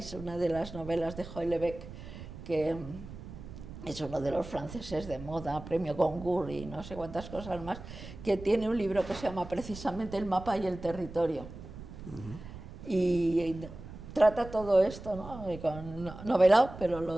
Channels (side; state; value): right; noise; rumble, 13 dB below the sound